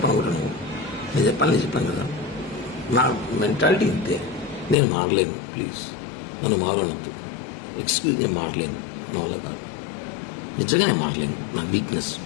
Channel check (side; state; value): right; drops out; at 4.8 s